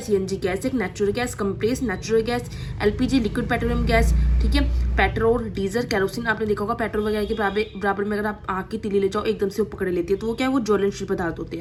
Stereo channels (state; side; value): identical; both; correlation 1.00